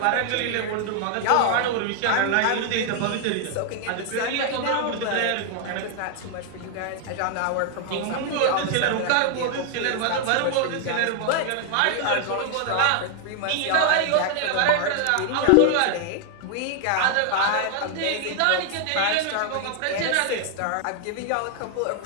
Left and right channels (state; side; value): different; both; correlation 0.00